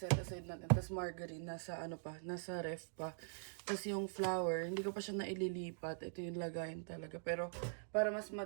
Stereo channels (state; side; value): silent; left; digital silence